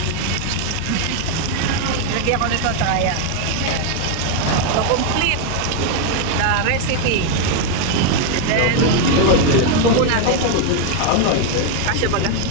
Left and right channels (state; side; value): different; both; correlation 0.01